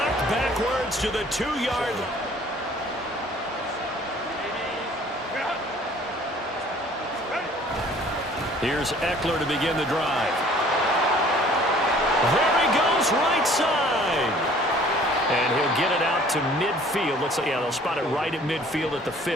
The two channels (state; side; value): normal; both; correlation 0.54